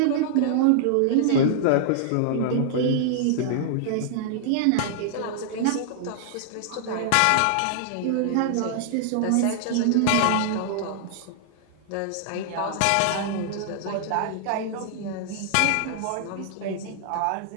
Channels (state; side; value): different; both; correlation -0.01